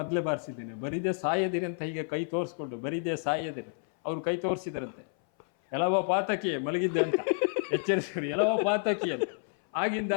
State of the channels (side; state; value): right; silent; 58 dB below the other